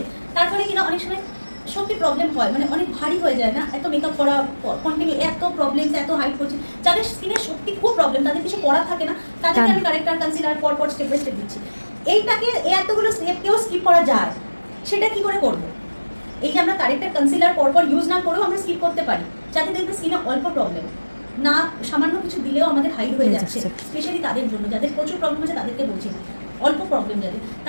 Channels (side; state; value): both; inverted; correlation -1.00